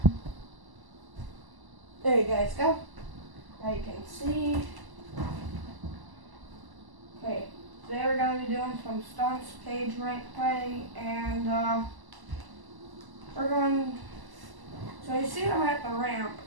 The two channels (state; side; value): late; left; 1.0 ms